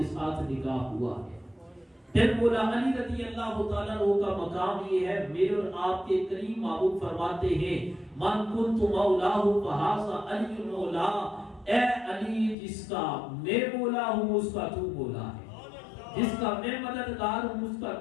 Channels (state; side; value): drops out; right; at 12.6 s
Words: ساتھ نکاح ہوا ہے۔ پھر مولا علی رضی اللہ تعالیٰ عنہ کا مقام یہ ہے، میرے اور آپ کے کریم محبوب فرماتے ہیں، من کنت مولاہ فہذا علی مولا، اے علی جس کا میں مولا ہوں اس کا تو مولا ہے، جس کا میں مددگار ہوں اس کا